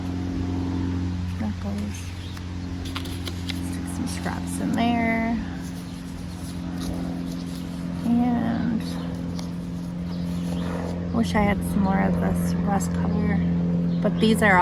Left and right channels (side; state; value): both; identical; correlation 1.00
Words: Stick some scraps in there. And I wish I had some more of this rust color, but these are